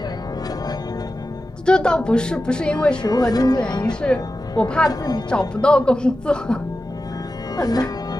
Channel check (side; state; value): both; normal; correlation 0.92